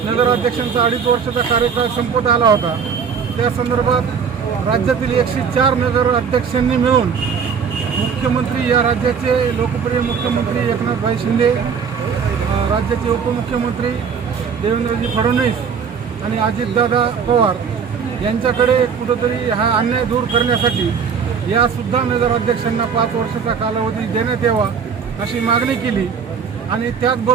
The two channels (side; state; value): left; quieter; 6.5 dB